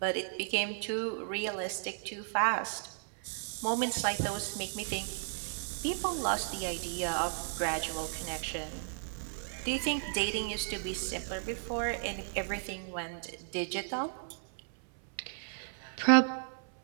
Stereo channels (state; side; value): silent; left; 55 dB below the other